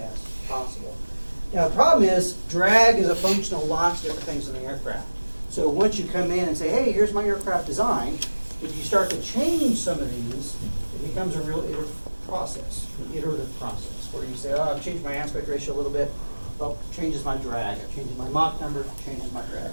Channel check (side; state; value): both; inverted; correlation -1.00